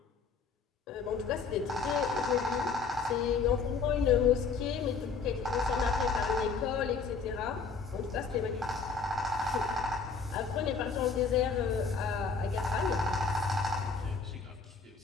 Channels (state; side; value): quieter; right; 5.0 dB